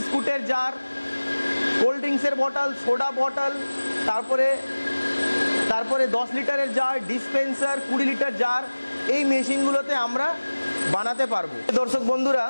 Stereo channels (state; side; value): inverted; both; correlation -1.00